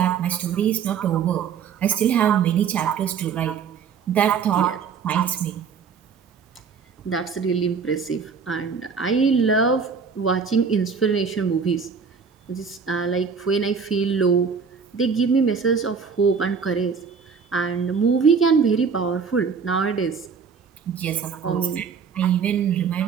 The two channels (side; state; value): left; quieter; 6.0 dB